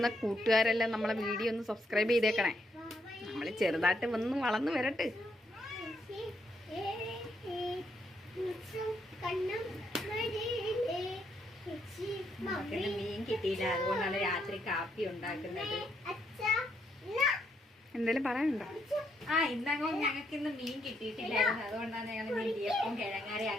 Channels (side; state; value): both; normal; correlation 0.76